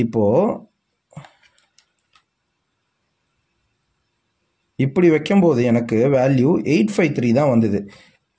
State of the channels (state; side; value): identical; both; correlation 1.00